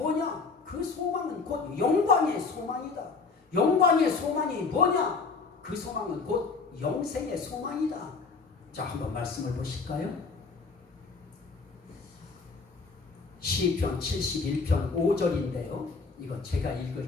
그 소망은 곧 영광의 소망이다. 영광의 소망이 뭐냐? 그 소망은 곧 영생의 소망이다. 자, 한번 말씀을 보실까요? 시편 71편 5절인데요. 이거 제가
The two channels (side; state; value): right; quieter; 4.5 dB